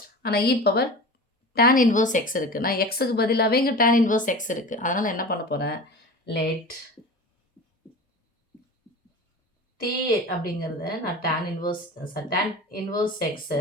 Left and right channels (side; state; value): both; normal; correlation 0.34